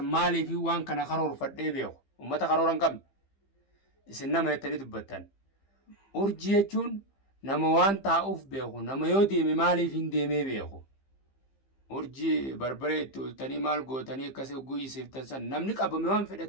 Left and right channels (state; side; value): late; right; 15 ms